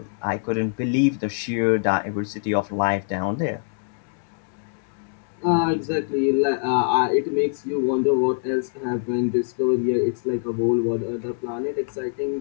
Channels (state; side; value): silent; right; digital silence